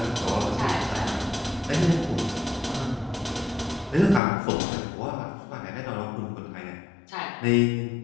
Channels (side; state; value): right; drops out; at 4.2 s